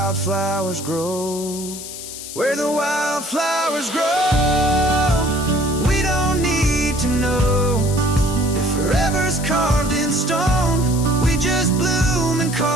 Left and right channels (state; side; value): noise; left; hiss, 10 dB below the sound